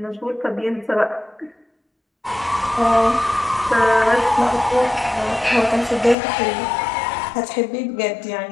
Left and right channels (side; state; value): right; drops out; at 6.2 s